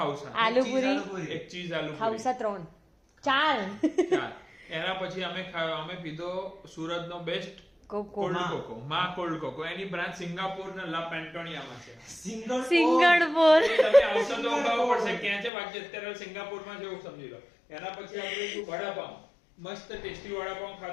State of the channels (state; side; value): drops out; right; at 15.5 s